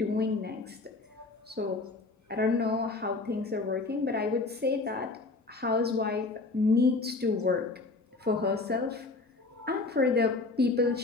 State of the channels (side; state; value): right; quieter; 3.6 dB